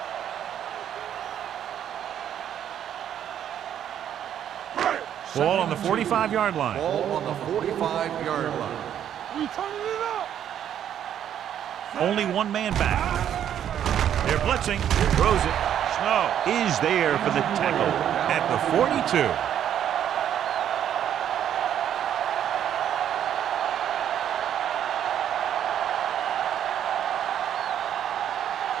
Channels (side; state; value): left; quieter; 10.0 dB